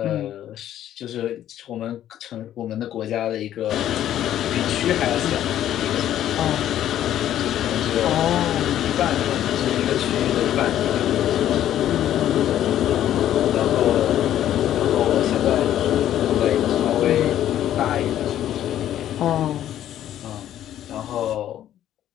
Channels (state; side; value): quieter; right; 11.7 dB